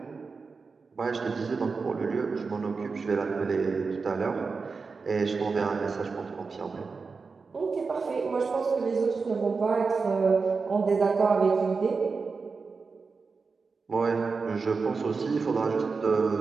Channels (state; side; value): quieter; left; 4.7 dB